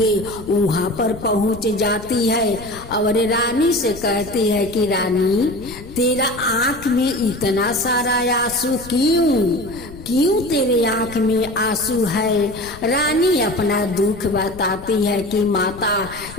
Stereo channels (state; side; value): noise; left; rumble, 16 dB below the sound